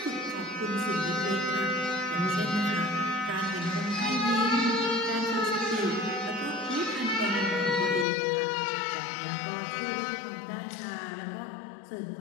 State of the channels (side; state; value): right; drops out; at 8.1 s